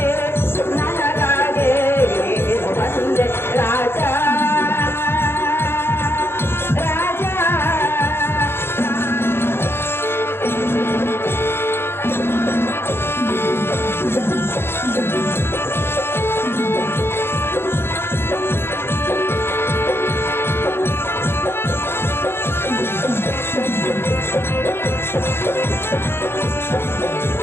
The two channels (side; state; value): right; late; 0.11 ms